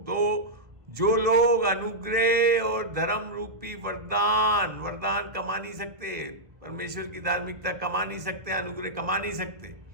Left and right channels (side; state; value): left; late; 1.3 ms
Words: तो जो लोग अनुग्रह और धर्म रूपी वरदान कमा नहीं सकते, परमेश्वर की धार्मिकता कमा नहीं सकते, अनुग्रह कमा नहीं सकते।